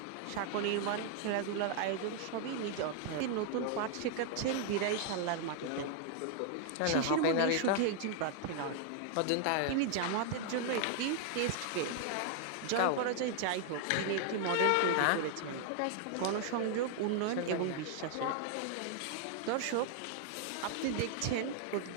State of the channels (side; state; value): both; different; correlation 0.00